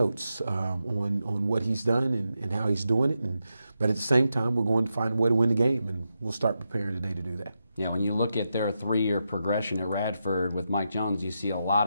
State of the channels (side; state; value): both; inverted; correlation -0.87